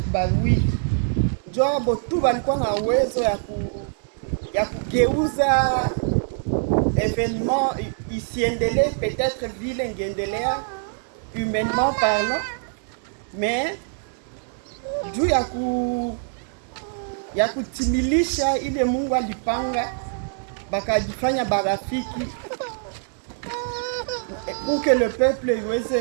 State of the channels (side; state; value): left; silent; digital silence